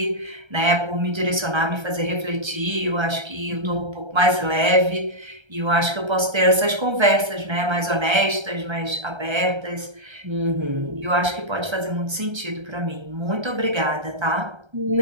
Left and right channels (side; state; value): left; late; 1.3 ms